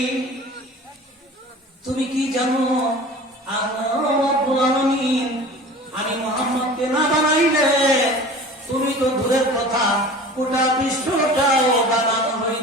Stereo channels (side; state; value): both; normal; correlation 0.40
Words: তুমি কি জানো আমি মুহাম্মদকে না বানাইলে তুমি তো দূরের কথা গোটা বিশ্বটাও বানানো